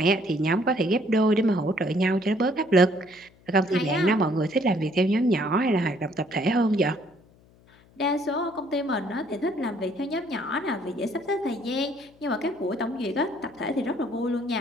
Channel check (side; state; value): left; noise; hum, 29 dB below the sound